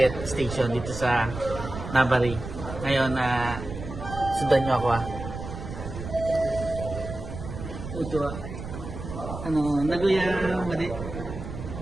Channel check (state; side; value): noise; right; rumble, 9 dB below the sound